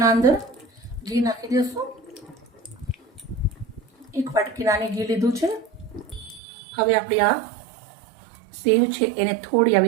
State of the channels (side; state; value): left; drops out; at 6.4 s